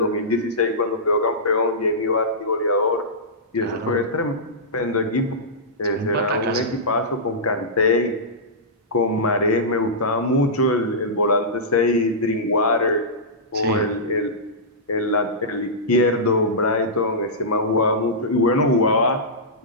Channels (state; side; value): normal; both; correlation -0.16